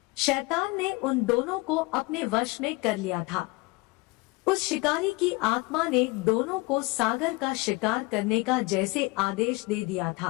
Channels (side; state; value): right; quieter; 24.6 dB